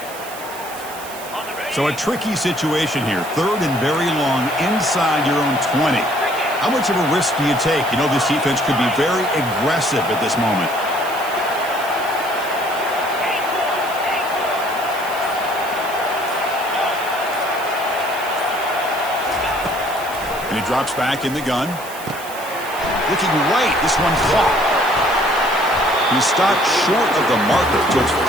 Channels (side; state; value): right; noise; hiss, 15 dB below the sound